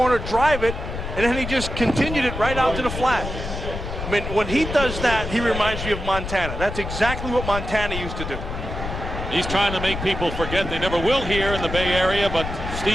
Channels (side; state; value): left; noise; rumble, 6 dB below the sound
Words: drive it, and then he just continued it right out to the flat. I mean, when he does that, he reminds me of Montana. That's exactly what Montana used to do. He's trying to make people forget. They never will here in the Bay Area, but